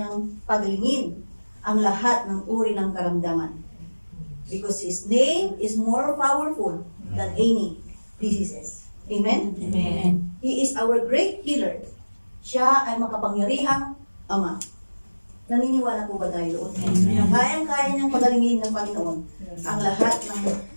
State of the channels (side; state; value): both; inverted; correlation -1.00